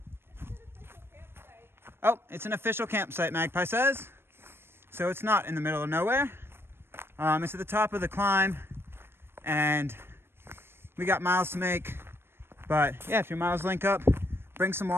Oh, it's an official campsite, Magpie says. So it's not in the middle of nowhere. It's at the top of the climb, and we got miles to make. But yeah, if your miles link up, bring some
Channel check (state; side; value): late; left; 0.11 ms